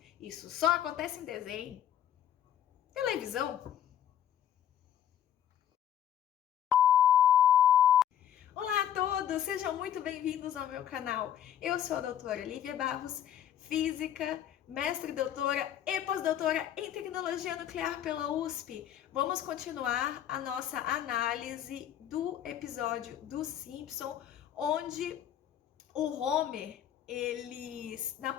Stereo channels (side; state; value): right; quieter; 10.4 dB